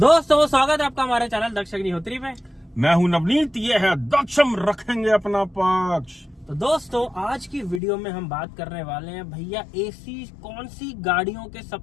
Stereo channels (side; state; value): right; drops out; at 7.8 s